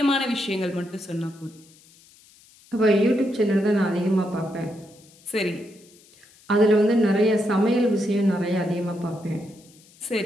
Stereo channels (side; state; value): left; noise; hiss, 27 dB below the sound